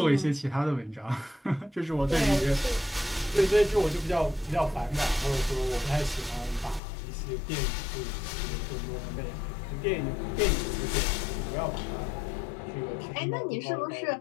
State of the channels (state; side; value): drops out; right; at 6.8 s